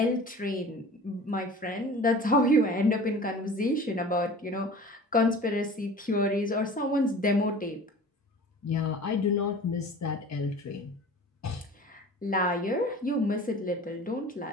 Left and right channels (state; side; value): normal; both; correlation 0.41